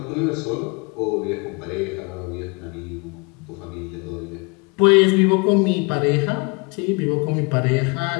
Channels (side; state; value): right; quieter; 30.5 dB